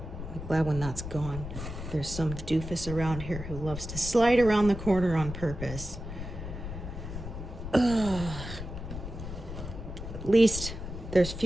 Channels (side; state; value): left; noise; rumble, 8 dB below the sound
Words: glad when that's gone. There's some doofus around here who loves to slide around the corner on purpose. Ugh. At least there's